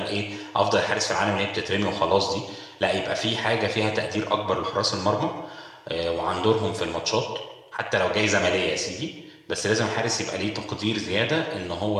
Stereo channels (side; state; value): both; identical; correlation 1.00